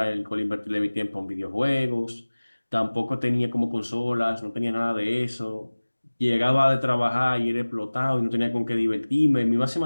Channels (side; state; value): both; inverted; correlation -1.00